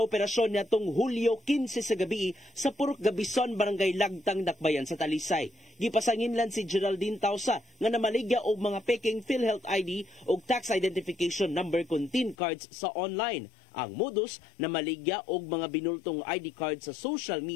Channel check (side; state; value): right; drops out; at 12.4 s